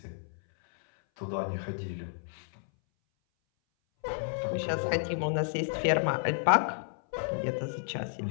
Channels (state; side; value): silent; right; 57 dB below the other